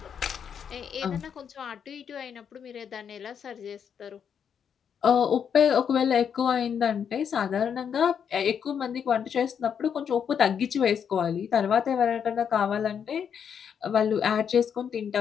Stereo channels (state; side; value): quieter; right; 7.7 dB